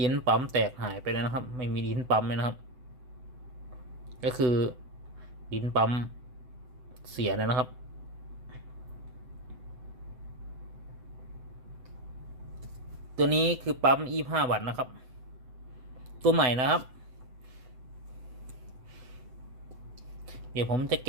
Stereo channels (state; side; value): late; left; 7.9 ms